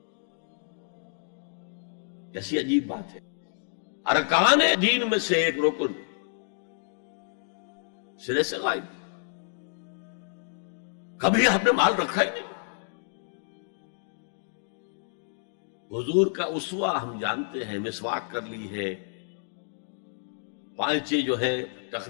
کیسی عجیب بات ہے. ارکان دین میں سے ایک رکن سرے سے غائب. کبھی آپ نے مال رکھا ہی نہیں. حضور کا اسوہ ہم جانتے ہیں، مسواک کر لی ہے، پانچے جو ہے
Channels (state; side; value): silent; right; 58 dB below the other